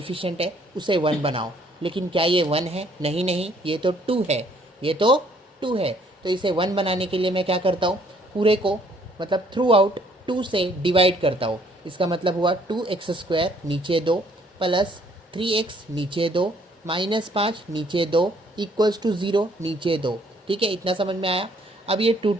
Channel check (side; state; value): both; normal; correlation 0.63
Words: है उसे 1 बनाओ। लेकिन क्या ये 1 है? नहीं नहीं, ये तो 2 है। ये तो 2 है। तो इसे 1 बनाने के लिए मैं क्या करता हूँ, पूरे को मतलब थ्रू आउट 2 से डिवाइड करता हूँ। इसका मतलब हुआ 2x² नीचे 2 प्लस 3x नीचे 2 माइनस 5 नीचे 2 इक्वल्स टू 0 नीचे 2। ठीक है, इतना समझ में आया। अब ये